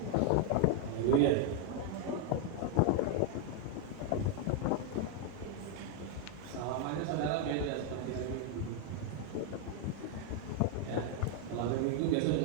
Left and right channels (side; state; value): both; different; correlation 0.01